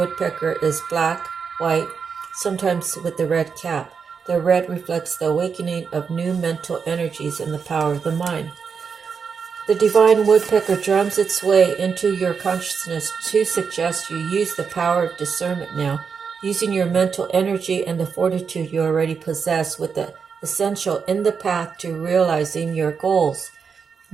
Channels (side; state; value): left; quieter; 6.0 dB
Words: is black, white, sometimes with the red cap. The red reflects the awakening of new mental energies and the power of the mind. The divine woodpecker drums its way into your consciousness to suggest you use the power of discernment now, using your mental energy and the fortitude you already possess with the essential in the path to realizing your goals.